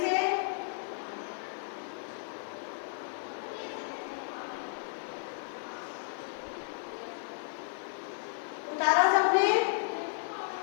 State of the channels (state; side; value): silent; right; digital silence